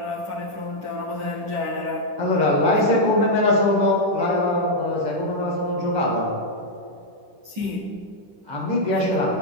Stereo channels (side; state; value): left; late; 10 ms